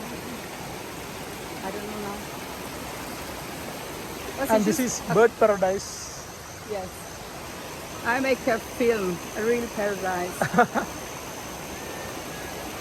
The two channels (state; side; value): identical; both; correlation 1.00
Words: don't know now. But And it this is bird paradise. Yes. I make a film, a real paradise.